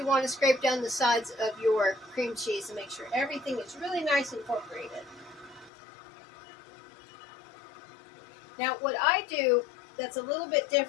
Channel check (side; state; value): right; drops out; at 5.7 s